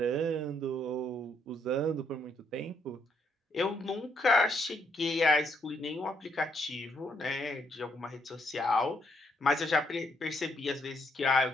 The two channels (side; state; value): both; normal; correlation 0.74